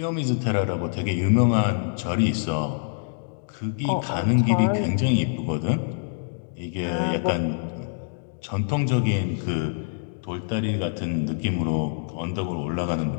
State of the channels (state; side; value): silent; right; digital silence